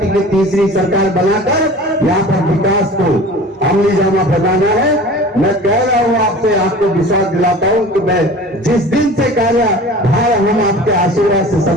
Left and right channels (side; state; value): both; normal; correlation 0.41